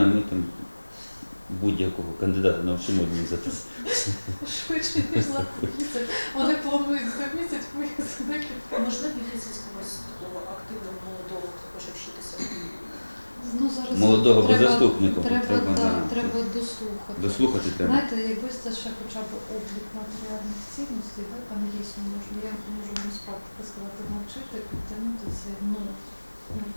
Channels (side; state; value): both; inverted; correlation -1.00